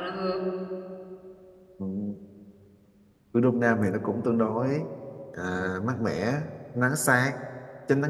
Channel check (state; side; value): identical; both; correlation 1.00